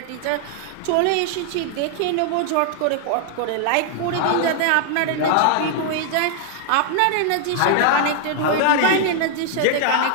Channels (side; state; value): both; different; correlation 0.00